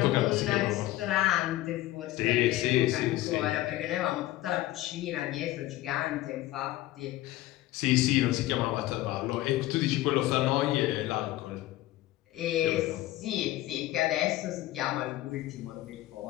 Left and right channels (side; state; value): right; quieter; 16.0 dB